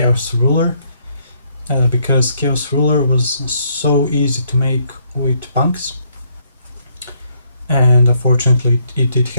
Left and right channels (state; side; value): inverted; both; correlation -0.71